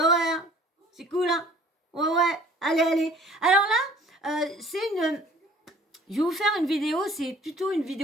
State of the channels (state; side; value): normal; both; correlation 0.52